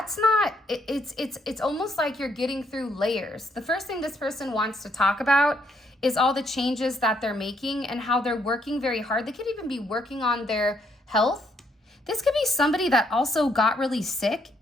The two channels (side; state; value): both; normal; correlation 0.72